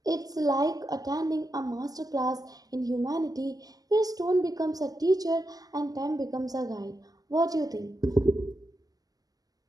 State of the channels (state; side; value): late; left; 0.18 ms